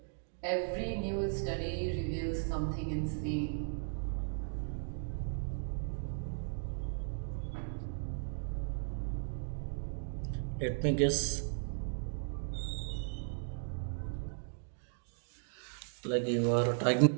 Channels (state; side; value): silent; left; digital silence